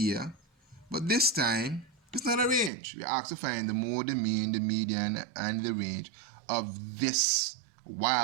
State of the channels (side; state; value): left; drops out; at 2.7 s